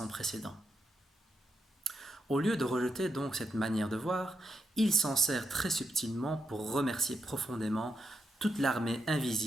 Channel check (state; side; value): normal; both; correlation 0.84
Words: précédent. Au lieu de rejeter donc cette manière de voir, il s'en sert très subtilement pour remercier profondément toute l'armée